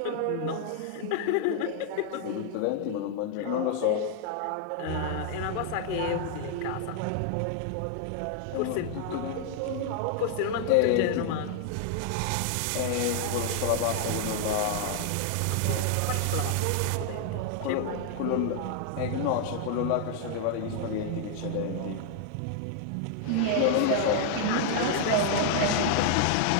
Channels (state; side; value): different; both; correlation 0.00